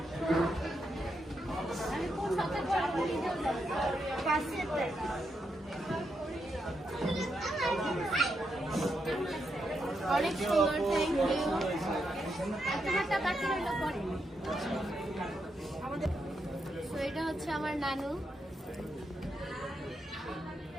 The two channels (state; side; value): normal; both; correlation 0.82